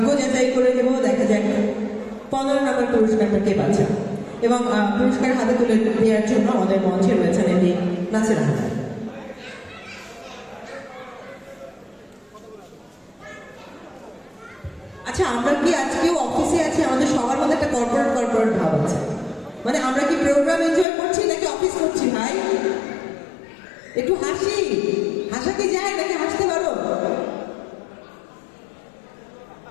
যাচাই করে নেব, দেখা যাক 15 নম্বর পুরস্কারটা কে পাচ্ছে। এবং পুরস্কার হাতে তুলে দেওয়ার জন্য আমাদের মঞ্চে রয়েছেন এমনি নাসির আহমেদ। আচ্ছা, আমরা কি আজকেও অফিসে আছি? আমাদের সবার মধ্যে একটা কর্পোরেট ভাব আছে। মানে আমরা কি প্রোগ্রাম এনজয় করছি নাকি অফিস করছি ভাই? একটু হাসি, হাসা কি যায় নাকি হাসতে পারো?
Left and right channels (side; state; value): right; drops out; at 20.9 s